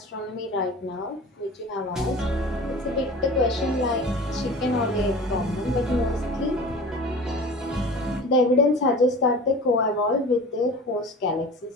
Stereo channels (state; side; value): normal; both; correlation 0.38